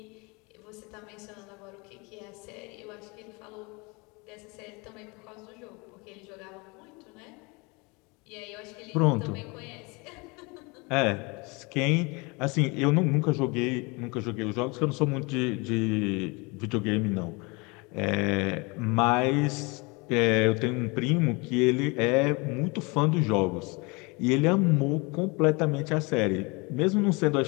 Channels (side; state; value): right; quieter; 28.0 dB